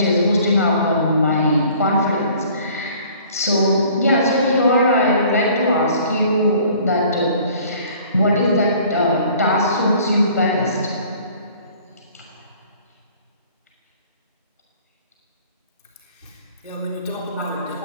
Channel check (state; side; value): inverted; both; correlation -0.53